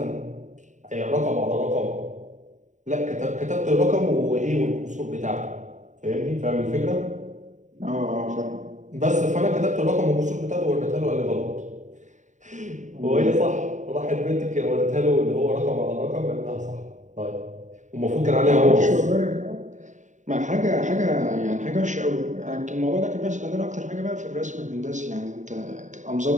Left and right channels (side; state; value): left; late; 0.36 ms